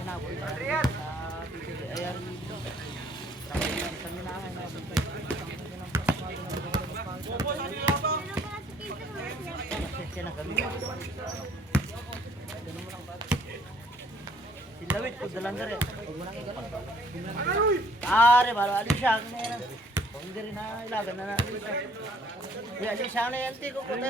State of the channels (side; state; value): both; normal; correlation 0.61